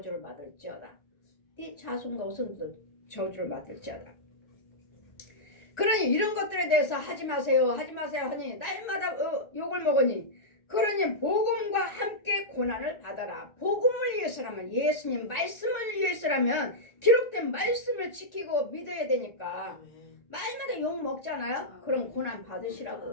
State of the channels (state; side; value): late; right; 1.4 ms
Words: 받을지어다. 네 자손과 후손들 저주를 받을지어다. 그러니 이런 것들에 대해서 하지 마세요 하니 날마다 욕을 먹으니 그러니 복음과 함께 고난을 받아라. 복음을 위해서라면 예수님 말씀을 위해서라면 기록된 말씀을 지키고 믿어야 되니까 말마다 욕 먹잖아요. 그럼 고난